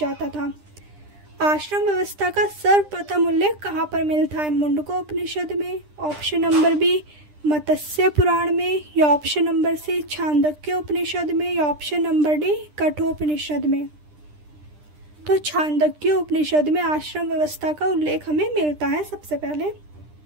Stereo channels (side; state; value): left; late; 10 ms